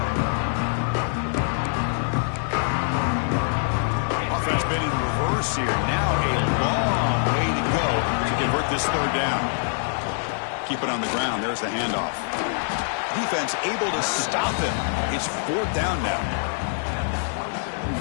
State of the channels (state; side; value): silent; right; digital silence